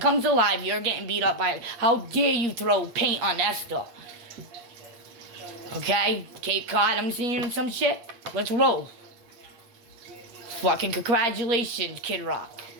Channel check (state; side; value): late; left; 8.3 ms